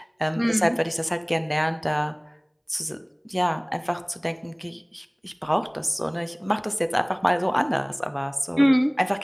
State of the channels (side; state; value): both; identical; correlation 1.00